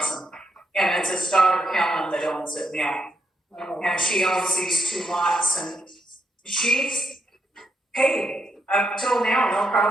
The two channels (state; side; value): normal; both; correlation 0.79